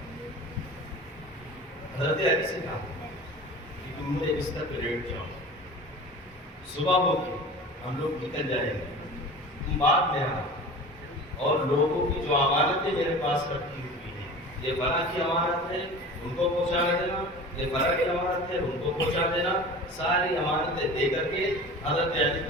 حضرت علی سے کہا کہ تم میرے بستر پہ لیٹ جاؤ، صبح ہوگی ہم لوگ نکل جائیں گے، تم بعد میں آنا، اور لوگوں کی جو امانتیں میرے پاس رکھی ہوئی ہیں، یہ بڑا کی امانت ہے ان کو پہنچا دینا، یہ بڑا کی امانت ہے ان کو پہنچا دینا، ساری امانتیں دے کر کے حضرت علی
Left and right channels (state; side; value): normal; both; correlation 0.37